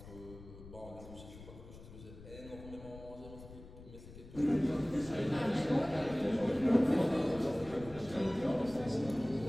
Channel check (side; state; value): left; noise; rumble, 16 dB below the sound